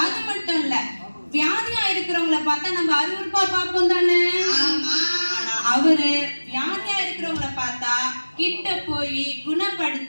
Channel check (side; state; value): both; inverted; correlation -1.00